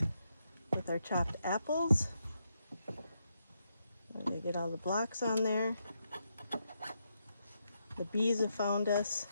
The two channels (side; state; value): both; inverted; correlation -0.81